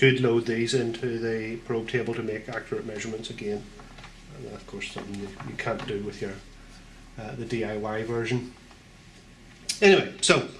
load these into the probe table to make accurate measurements again. And of course something you can't do with your the DIY version. Anyway, so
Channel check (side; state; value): both; identical; correlation 1.00